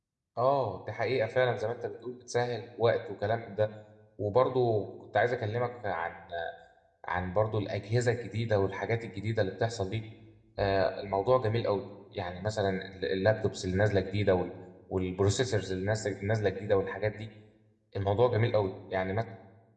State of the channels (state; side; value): identical; both; correlation 1.00